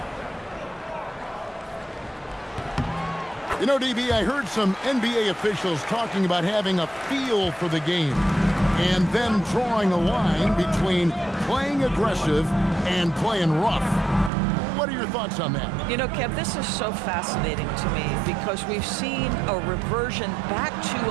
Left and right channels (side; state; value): left; drops out; at 14.3 s